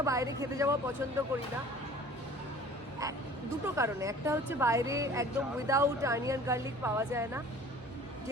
বাইরে খেতে যাওয়া পছন্দ করি না, দুটো কারণে। একটা হচ্ছে বাইরে একদম উইদাউট অনিয়ন গার্লিক পাওয়া যায় না,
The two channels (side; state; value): both; normal; correlation 0.47